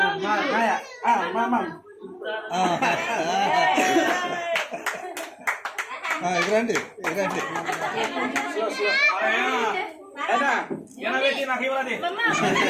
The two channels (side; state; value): both; identical; correlation 1.00